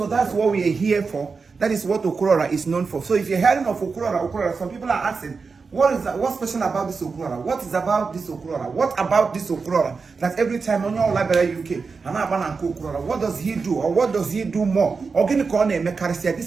that's what we are here for. That is what Okurora is known for. So if you're hearing of Okurora, some people are asking, what's special about this Okurora? What is about this Okurora? What about this Okurora? That every time on your library UK, what does he do? Or what does he do more?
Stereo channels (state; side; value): quieter; left; 4.8 dB